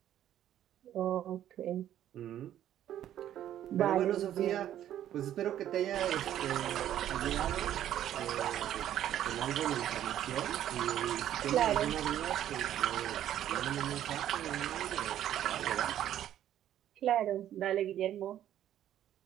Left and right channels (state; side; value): quieter; left; 11.5 dB